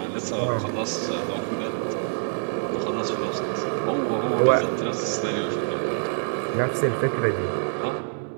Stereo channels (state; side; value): silent; left; 61 dB below the other